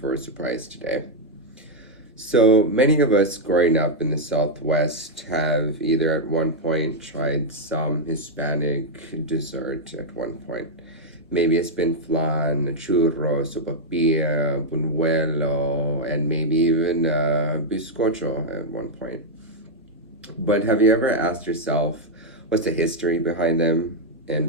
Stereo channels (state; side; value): normal; both; correlation -0.01